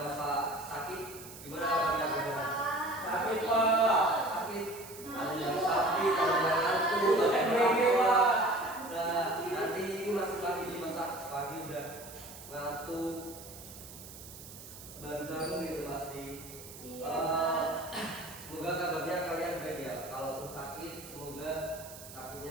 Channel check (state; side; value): noise; right; hiss, 15 dB below the sound